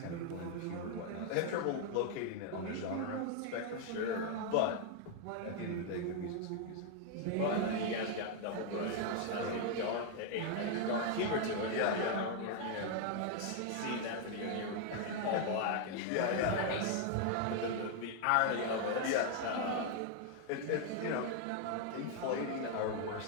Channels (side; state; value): both; different; correlation 0.00